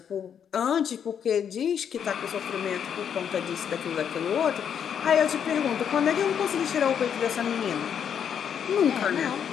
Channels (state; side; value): quieter; right; 8.2 dB